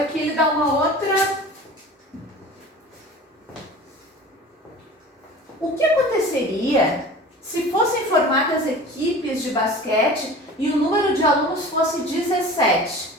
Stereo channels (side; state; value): both; normal; correlation 0.39